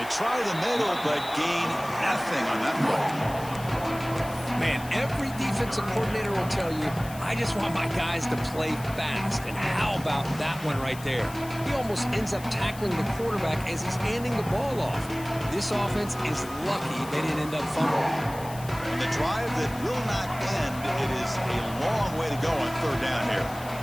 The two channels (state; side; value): noise; left; hiss, 16 dB below the sound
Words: try the middle, but gain nothing on that play. Man, every defensive coordinator will tell you, I just want my guys to play fast. And how about that one right there? He almost ends up tackling the quarterback as he's handing the ball off. This offense is lucky they didn't end up fumbling. And the drive that will not end, it is a long way to go on third down here.